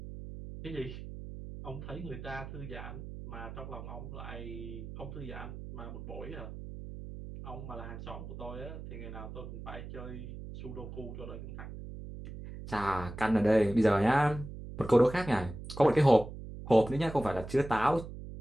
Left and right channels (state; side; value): noise; right; hum, 10 dB below the sound